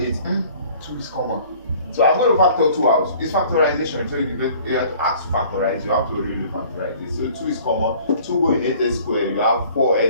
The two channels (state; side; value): inverted; both; correlation -0.52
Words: 2 is common, so I'm going to factor 2 out. It's factorization, so you have to ask to factorize, you have to really factorize it. So 2 is common, 2 go in 8a square, you have